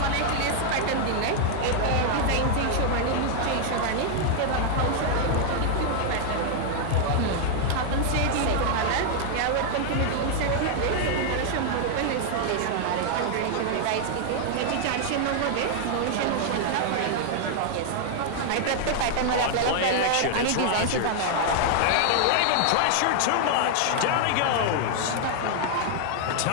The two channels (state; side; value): different; both; correlation 0.00